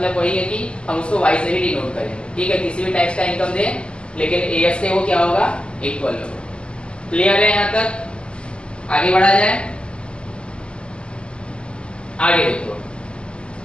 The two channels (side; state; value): right; late; 0.051 ms